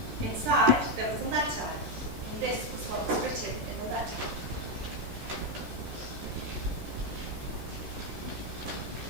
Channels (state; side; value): late; left; 14 ms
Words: Inside, there was a letter, and this was what was written in the letter.